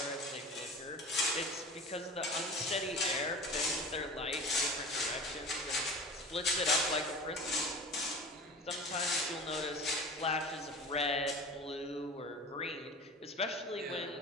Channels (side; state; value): both; normal; correlation 0.36